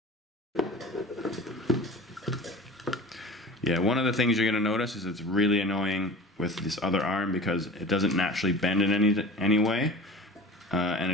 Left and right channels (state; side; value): normal; both; correlation 0.38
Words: Yeah, one of the things you're going to notice is it's really annoying with this other arm because it doesn't naturally bend in any way, and